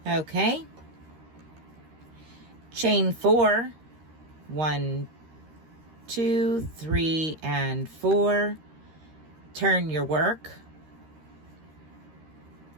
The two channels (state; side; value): late; left; 13 ms